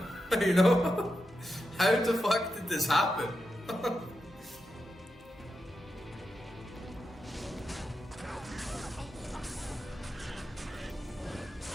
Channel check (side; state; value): both; normal; correlation 0.87